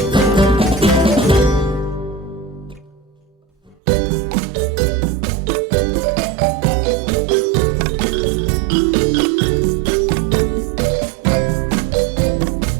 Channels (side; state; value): left; drops out; at 3.8 s